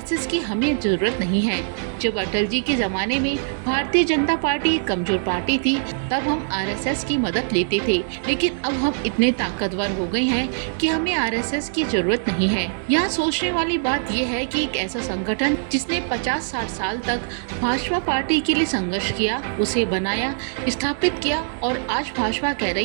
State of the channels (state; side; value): silent; left; digital silence